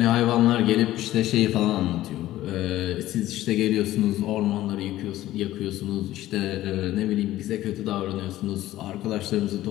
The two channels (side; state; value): right; quieter; 14.9 dB